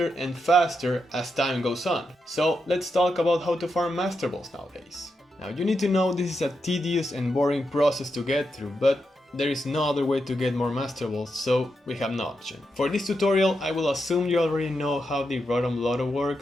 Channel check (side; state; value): both; normal; correlation 0.85